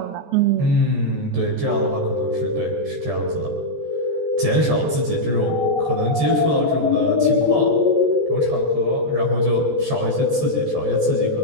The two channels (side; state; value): left; late; 13 ms